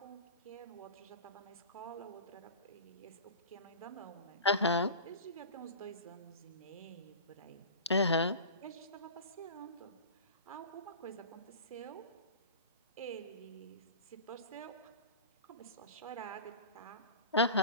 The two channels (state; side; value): inverted; both; correlation -0.34